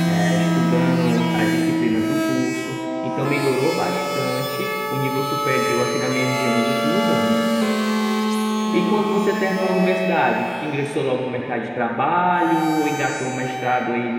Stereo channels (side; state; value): both; identical; correlation 1.00